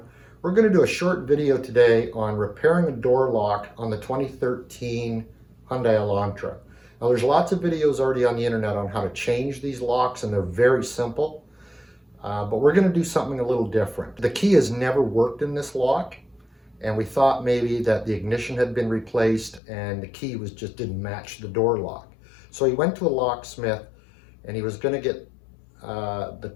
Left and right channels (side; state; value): right; drops out; at 19.6 s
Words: We're going to do a short video today on repairing a door lock on the 2013 Hyundai Elantra. Now, there's lots of videos already on the internet on how to change these locks, and they're very simple. But we're going to do something a little different. The key has never worked in this lock, and we thought maybe that the ignition had been replaced and the key just didn't match the door lock. So he went to a locksmith, and he was going to get the